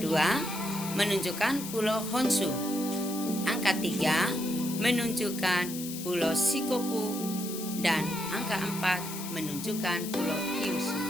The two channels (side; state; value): left; noise; hiss, 9 dB below the sound